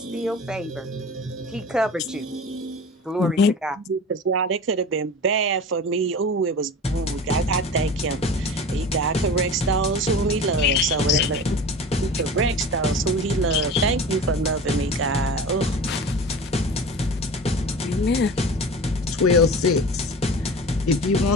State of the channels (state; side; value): normal; both; correlation 0.35